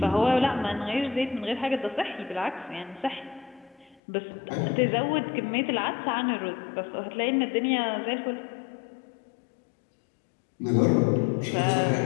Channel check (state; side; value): drops out; right; at 4.0 s